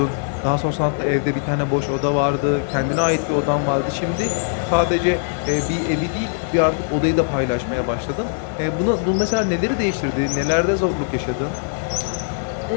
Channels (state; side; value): silent; right; 65 dB below the other